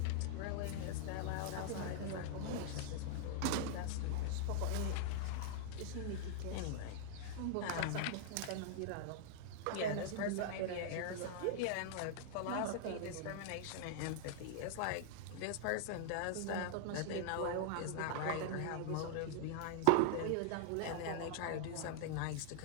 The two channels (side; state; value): both; different; correlation -0.01